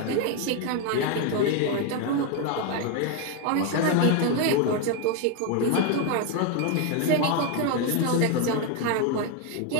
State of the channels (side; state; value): both; different; correlation 0.01